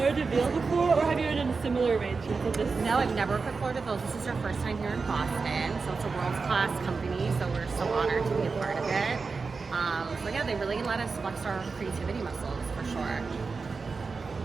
de Ville before, or have you done a similar arrangement of this? No, I've never worked with Fleur de Ville. This is our first time here in Boston, so it's a world-class company, so we're so honored to be a part of it. So yeah, they really let us flex our creativity muscles, for sure.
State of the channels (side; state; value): left; quieter; 4.6 dB